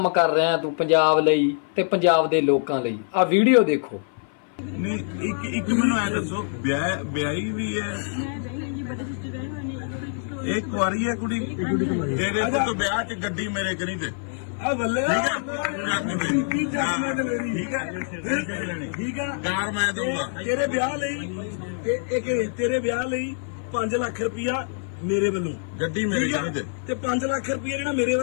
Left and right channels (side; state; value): right; silent; 56 dB below the other